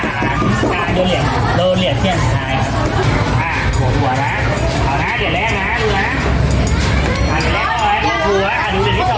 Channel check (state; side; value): identical; both; correlation 1.00